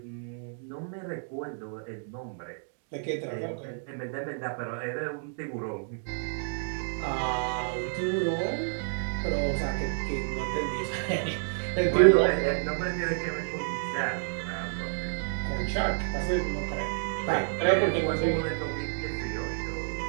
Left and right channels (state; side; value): silent; left; digital silence